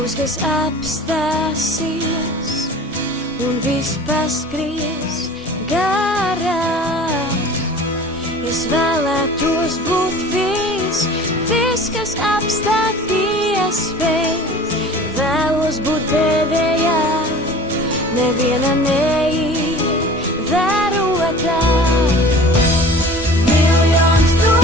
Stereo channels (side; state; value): both; normal; correlation 0.43